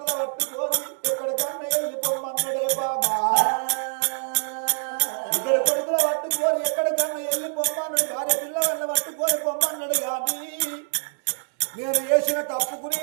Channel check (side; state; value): left; silent; 61 dB below the other